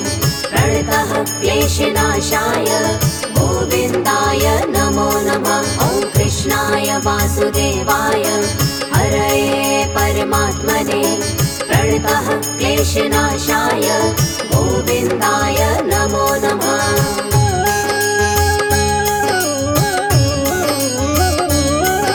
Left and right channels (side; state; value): both; identical; correlation 1.00